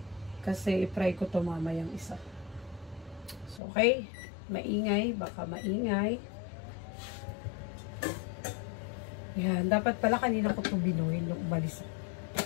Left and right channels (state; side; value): drops out; right; at 3.6 s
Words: Kasi i-fry ko to mamayang isa. So, okay. Maingay. Baka maingay. Yan, dapat pala kanina ko ito binuhin nung umalis.